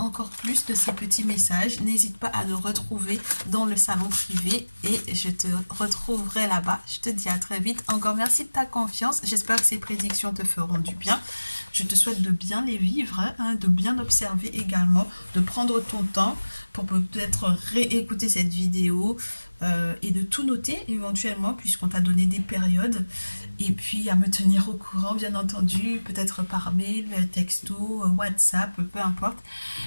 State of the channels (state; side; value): inverted; both; correlation -1.00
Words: plus de ces petits messages, n'hésite pas à nous retrouver dans le salon privé et je te retrouverai là-bas. Je te dis à très vite. Encore merci de ta confiance. J'espère que ces prédictions te feront du bien. Je te souhaite de bien les vivre, hein, de bien observer également, de prendre ton temps pour peut-être réécouter cette vidéo et de tout noter éventuellement puisqu'on t'a donné des périodes. Et puis à me tenir au courant, bien entendu, peut-être par mail, texto, WhatsApp, peu importe